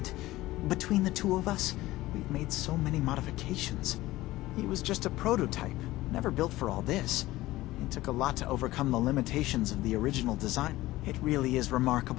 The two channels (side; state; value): right; quieter; 17.4 dB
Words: Between the two of us, we've made so many modifications. He was just a prototype, never built for all this. It took a lot to overcome the limitations of the original design. It really is